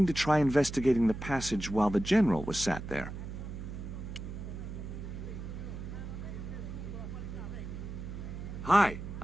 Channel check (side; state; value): right; noise; hum, 8 dB below the sound